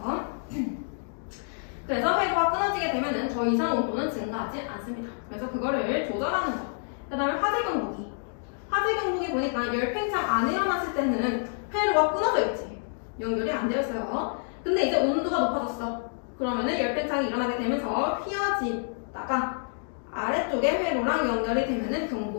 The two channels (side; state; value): right; silent; digital silence